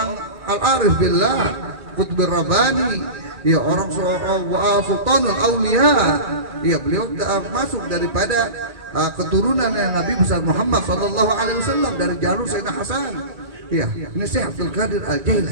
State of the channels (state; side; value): late; left; 1.9 ms